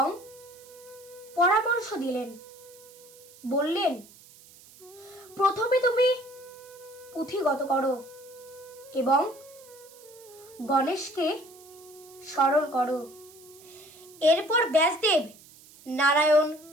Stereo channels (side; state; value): right; noise; hiss, 23 dB below the sound